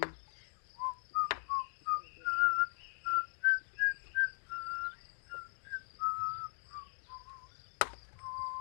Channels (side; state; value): right; silent; digital silence